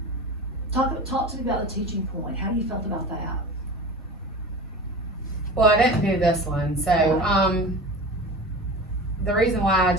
Talk to me about the teaching point. How do you felt about that? Well, I didn't do this one, so, the reason why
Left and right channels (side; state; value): both; normal; correlation 0.34